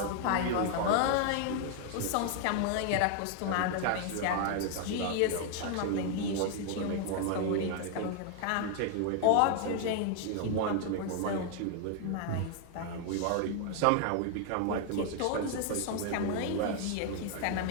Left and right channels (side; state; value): both; different; correlation 0.00